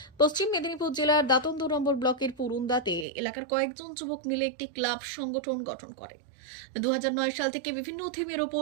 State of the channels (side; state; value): left; drops out; at 3.1 s